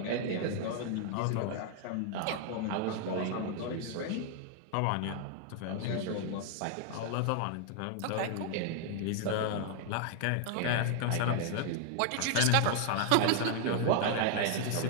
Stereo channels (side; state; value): both; different; correlation 0.00